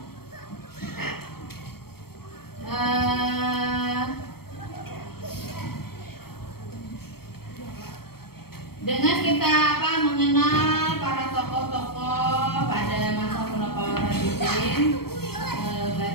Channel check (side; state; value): right; late; 0.95 ms